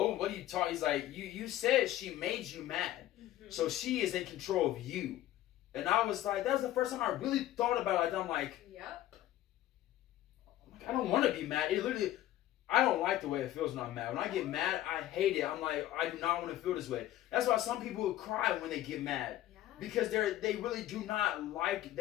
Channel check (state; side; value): quieter; right; 13.9 dB